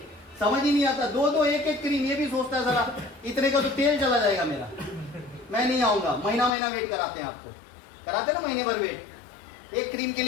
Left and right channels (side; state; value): right; drops out; at 6.5 s